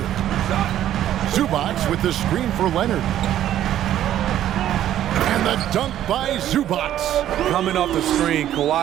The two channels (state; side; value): quieter; left; 11.8 dB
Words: Zubac with the screen for Leonard. And And the dunk by Zubac. Coming off the screen,